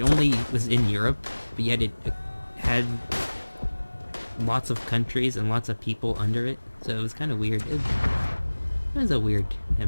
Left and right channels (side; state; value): both; inverted; correlation -1.00